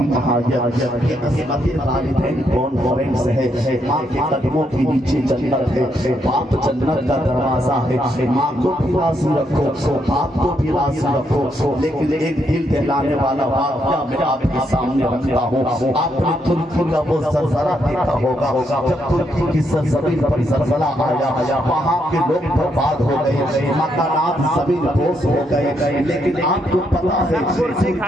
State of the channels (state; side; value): normal; both; correlation 0.77